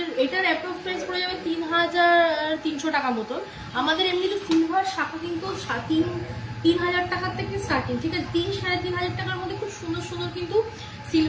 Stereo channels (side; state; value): both; identical; correlation 1.00